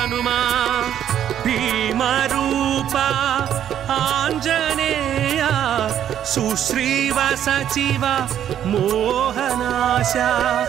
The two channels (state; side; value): quieter; left; 10.2 dB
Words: భీమరూప ఆంజనేయ సుశ్రీవ సచివ మోహనాశ,